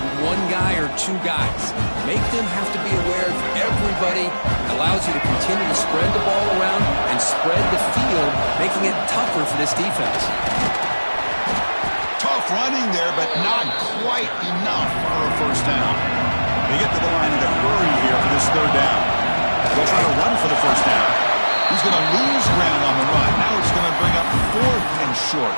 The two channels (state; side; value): inverted; both; correlation -1.00